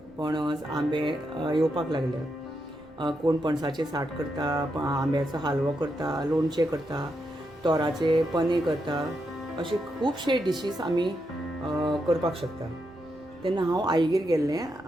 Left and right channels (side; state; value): right; noise; rumble, 27 dB below the sound